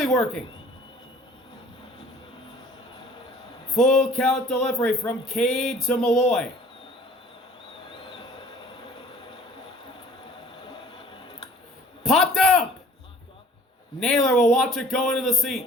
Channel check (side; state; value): both; normal; correlation 0.51